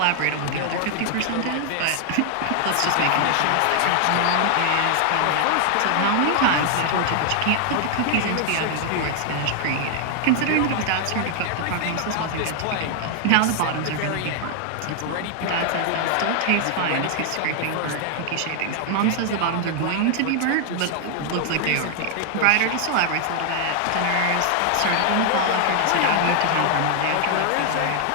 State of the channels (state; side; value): different; both; correlation 0.00